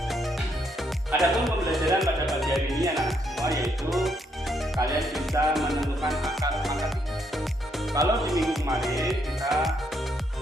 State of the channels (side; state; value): both; normal; correlation 0.74